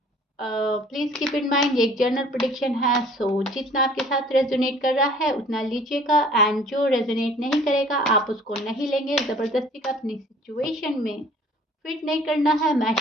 प्लीज़ कीप इन माइंड ये एक जनरल प्रिडिक्शन है, सो जितना आपके साथ रेजोनेट कर रहा है उतना लीजिएगा एंड जो रेजोनेट नहीं करेगा आप उसको नहीं लेंगे। ज़बरदस्ती का अपनी सिचुएशन में फिट नहीं करना है,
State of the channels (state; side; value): normal; both; correlation 0.52